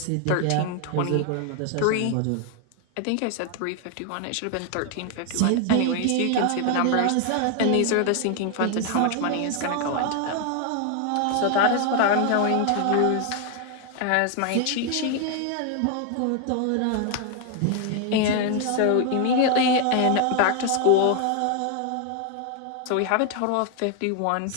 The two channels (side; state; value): both; different; correlation 0.00